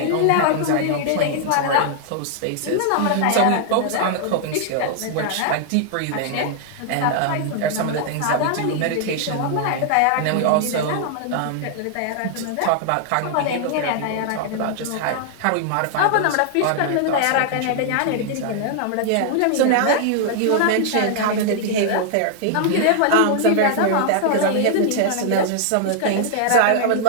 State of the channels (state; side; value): different; both; correlation -0.01